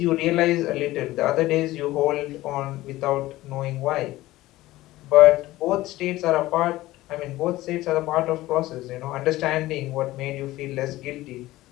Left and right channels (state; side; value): quieter; right; 17.1 dB